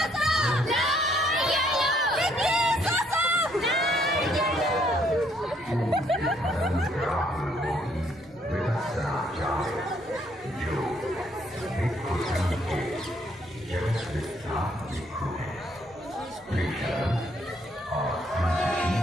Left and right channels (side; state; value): both; normal; correlation 0.68